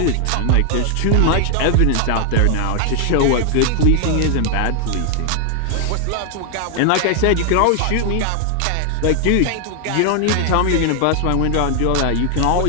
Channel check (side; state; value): both; different; correlation 0.00